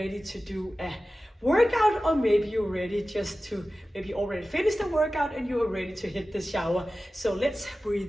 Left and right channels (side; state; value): both; normal; correlation 0.95